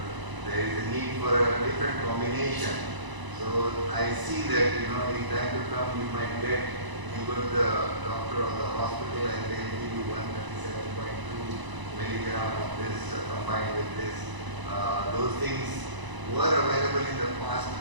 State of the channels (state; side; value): late; left; 1.0 ms